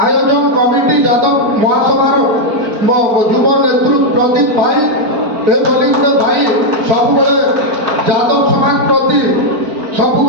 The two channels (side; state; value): left; late; 4.4 ms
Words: যাদব মহাসভার যুব নেতৃত্ব প্রদীপ ভাই এভাবে গোটে ভাই সবুলে যাদব সমাজ প্রতি